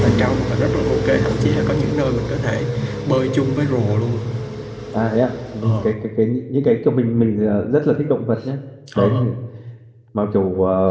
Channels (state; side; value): identical; both; correlation 1.00